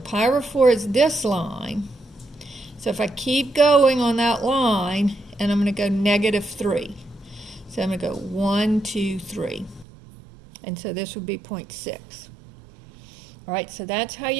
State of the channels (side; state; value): left; drops out; at 9.9 s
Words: over 4 is this line. So if I keep going on that line, and I'm going to go -3. So I'm going to go 1, 2, 3. And so this would be 0.6. All right, so that's how